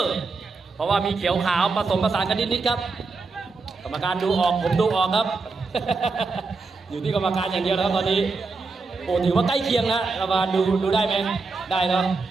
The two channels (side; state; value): left; quieter; 4.1 dB